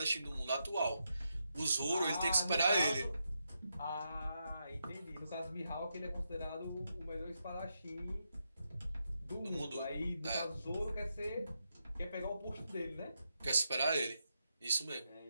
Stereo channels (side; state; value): both; inverted; correlation -0.84